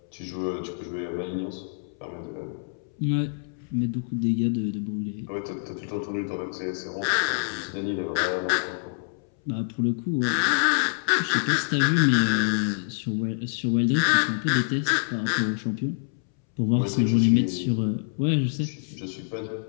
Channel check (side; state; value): right; silent; 61 dB below the other